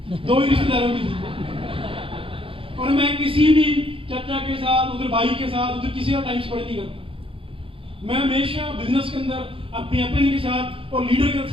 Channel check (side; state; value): left; late; 0.26 ms